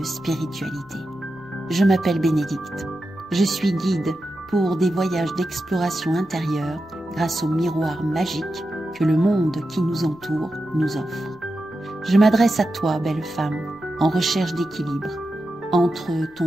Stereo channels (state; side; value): noise; left; rumble, 28 dB below the sound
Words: spiritualité. Je m'appelle Bénédicte. Je suis guide pour des voyages d'exploration intérieure grâce au miroir magique que le monde qui nous entoure nous offre. Je m'adresse à toi, belle femme, en recherche d'équilibre entre